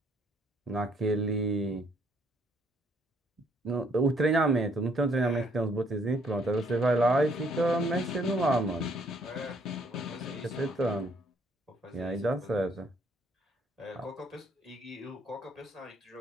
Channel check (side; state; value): both; normal; correlation 0.66